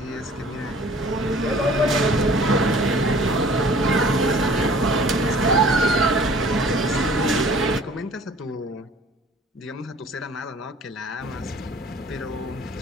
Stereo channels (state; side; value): normal; both; correlation 0.51